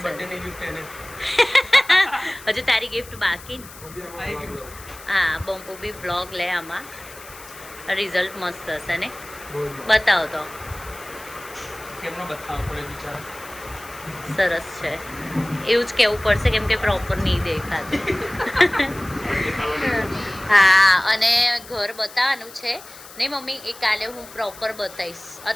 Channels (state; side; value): noise; left; hiss, 18 dB below the sound